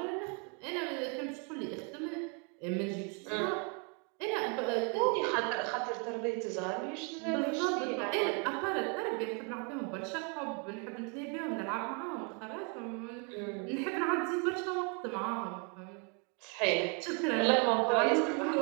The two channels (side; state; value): left; quieter; 35.7 dB